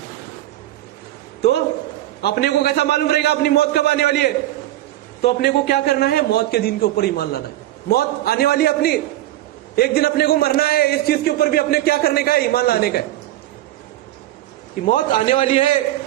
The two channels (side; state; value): left; quieter; 14.7 dB